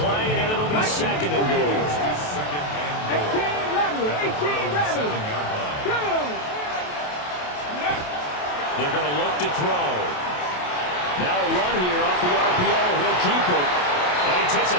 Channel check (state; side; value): late; right; 28 ms